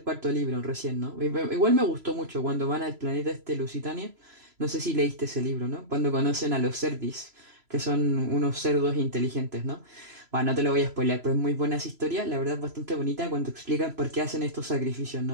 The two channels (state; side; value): late; left; 3.0 ms